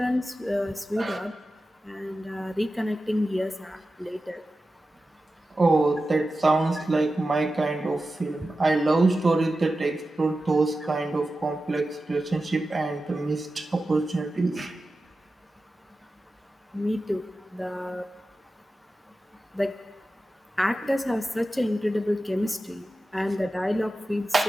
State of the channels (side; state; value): both; normal; correlation 0.93